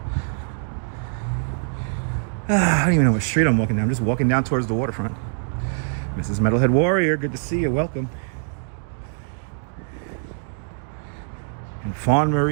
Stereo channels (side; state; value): left; silent; 63 dB below the other